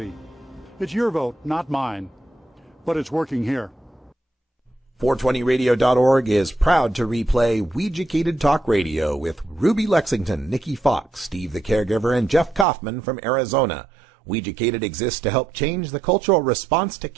It's your vote, not mine, but it's working here. 420radio.org is proud to replay Weeducated Talk Radio with Ruby Lexington, Nikki Fox, Steve the Caregiver, and Jeff Kaufman from Arizona. Weeducated exists to help change the cultural response to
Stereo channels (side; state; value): left; drops out; at 12.7 s